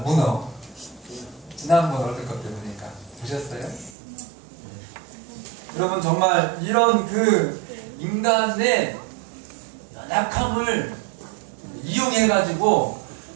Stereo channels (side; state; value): left; drops out; at 4.0 s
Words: 문어. 지난번 월드컵 때 보니까 보셨어요? 네. 여러분 정말 이런 그 인간의 연약함을 이용해가지고